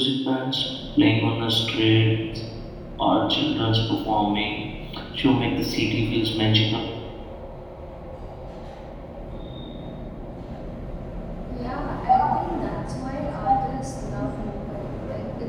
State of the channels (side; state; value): both; identical; correlation 1.00